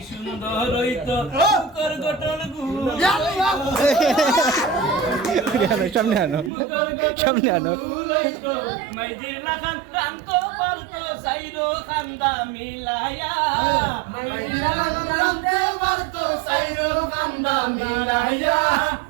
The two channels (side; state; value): left; drops out; at 6.5 s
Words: সুন্দর হইতো মুখর গঠন সামনে আনো মাইজির লাখান কান্ত পালতো সাইরো খান্দা মিলায়া মাইজির লাখান কান্তে পালতো সাইরো খান্দা মিলায়া